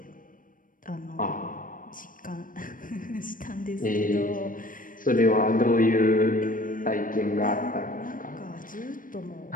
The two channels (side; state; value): right; late; 0.40 ms